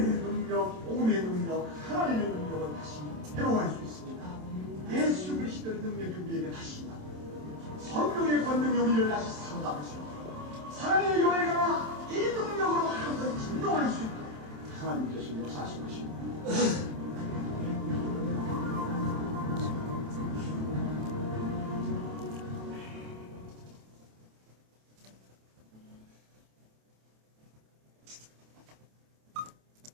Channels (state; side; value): late; left; 27 ms